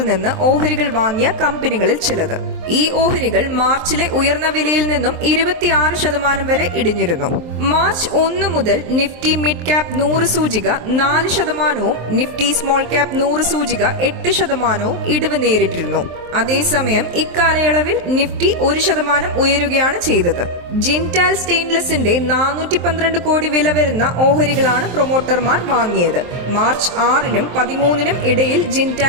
നിന്ന് ഓഹരികൾ വാങ്ങിയ കമ്പനികളിൽ ചിലത്. ഈ ഓഹരികൾ മാർച്ചിലെ ഉയർന്ന വിലയിൽ നിന്നും 26% വരെ ഇടിഞ്ഞിരുന്നു. മാർച്ച് 1 മുതൽ നിഫ്റ്റി മിഡ് ക്യാപ് 100 സൂചിക 4%, നിഫ്റ്റി സ്മോൾ ക്യാപ് 100 സൂചിക 8% ഇടിവ് നേരിട്ടിരുന്നു. അതേസമയം ഇക്കാലയളവിൽ നിഫ്റ്റി 1% ഉയരുകയാണ് ചെയ്തത്. ജിൻഡാൽ സ്റ്റെയിൻലെസിന്റെ 412 കോടി വില വരുന്ന ഓഹരികളാണ് പ്രൊമോട്ടർമാർ വാങ്ങിയത്. മാർച്ച് 6-നും 13-നും ഇടയിൽ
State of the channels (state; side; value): late; left; 23 ms